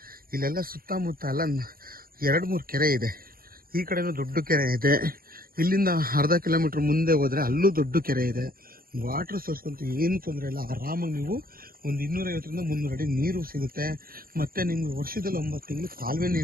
ಇಲ್ಲೆಲ್ಲ ಸುತ್ತಮುತ್ತ ಎಲ್ಲ 2-3 ಕೆರೆ ಇದೆ. ಈ ಕಡೆನೂ ದೊಡ್ಡ ಕೆರೆ ಇದೆ. ಇಲ್ಲಿಂದ ಅರ್ಧ ಕಿಲೋಮೀಟ್ರ್ ಮುಂದೆ ಹೋದರೆ ಅಲ್ಲೂ ದೊಡ್ಡ ಕೆರೆ ಇದೆ. ವಾಟರ್ ಸೋರ್ಸ್ ಅಂತೂ ಏನು ತೊಂದರೆ ಇಲ್ಲ. ಆರಾಮಾಗಿ ನೀವು ಒಂದು 250 ರಿಂದ 300 ಅಡಿ ನೀರು ಸಿಗುತ್ತೆ. ಮತ್ತು ನಿಮಗೆ ವರ್ಷದಲ್ಲಿ 9 ತಿಂಗಳು ಕಾಲುವೆ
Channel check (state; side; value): late; left; 0.42 ms